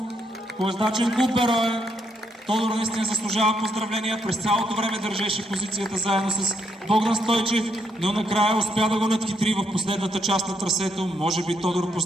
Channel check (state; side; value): normal; both; correlation 0.76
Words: колездачен клуб Берое. Тодор наистина заслужава поздравления, през цялото време държеше позицията заедно с Богдан Стойчев, но накрая успя да го надхитри в последната част на трасето. Може би Тодор